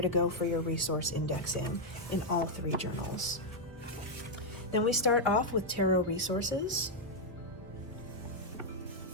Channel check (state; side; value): normal; both; correlation -0.01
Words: to go for your resource indexing in all three journals. Then we start off with tarot resources.